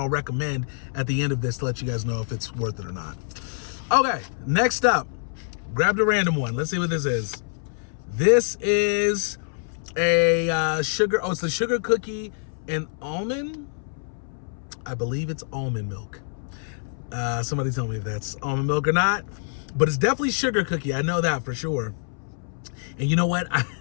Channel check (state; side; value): silent; right; 61 dB below the other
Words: recommend at the end of this to let you guys know if it's worth it or not. Okay, next up, grabbed a random one. Let's see what this is. This is a sugar. Oh, it's the sugar cookie and almond. I believe it's almond milk. Somebody tell me if that's almond milk or not, but it's definitely sugar cookie. I know that for sure. And you know what?